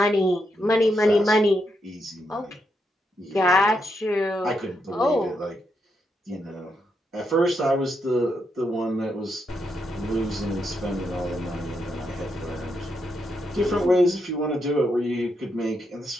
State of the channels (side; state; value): both; normal; correlation 0.81